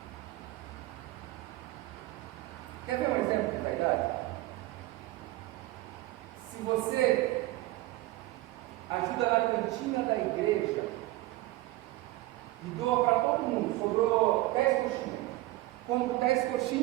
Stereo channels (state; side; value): quieter; left; 18.4 dB